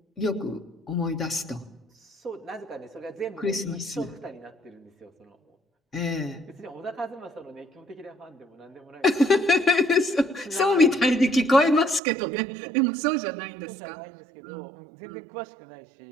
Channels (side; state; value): left; drops out; at 12.0 s